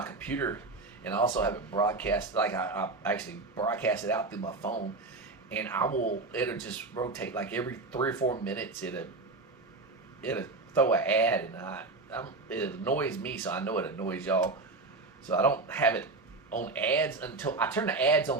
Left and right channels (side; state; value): left; quieter; 3.4 dB